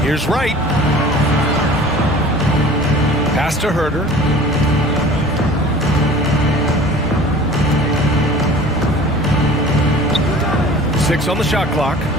Here's Wright. Pass to Herder. Six on the shot clock.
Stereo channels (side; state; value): both; normal; correlation 0.44